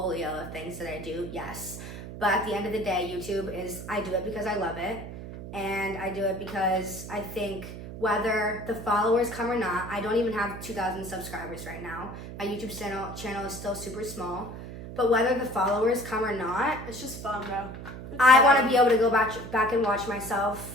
of things that I do, yes. But at the end of the day, YouTube is, I do it because I love it, and I do it because I think whether the followers come or not, I don't even have 2,000 subscribers right now. My YouTube channel is still super small, but whether the followers come or not, It's just fun, bro. I want to be able to go back and watch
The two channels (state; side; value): noise; right; hum, 11 dB below the sound